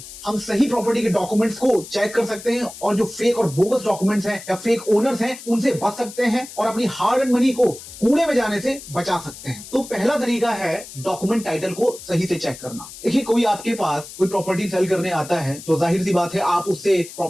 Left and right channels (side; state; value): left; noise; hiss, 15 dB below the sound